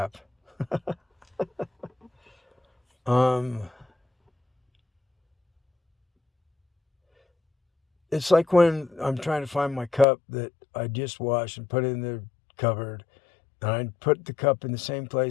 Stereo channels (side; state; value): right; drops out; at 10.1 s